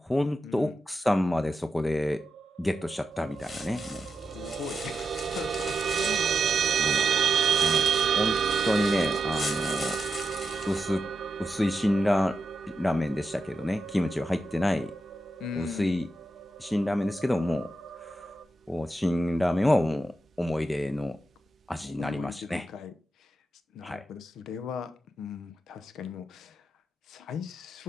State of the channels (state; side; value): normal; both; correlation 0.87